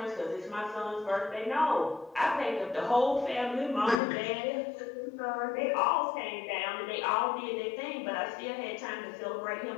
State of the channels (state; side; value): drops out; right; at 4.0 s